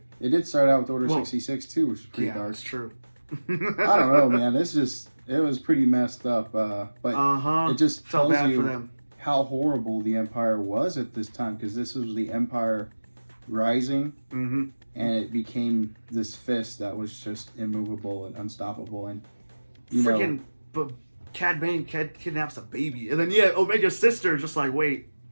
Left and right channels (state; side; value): inverted; both; correlation -1.00